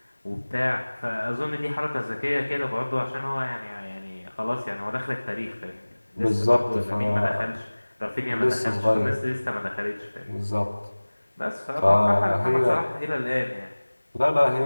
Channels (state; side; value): inverted; both; correlation -1.00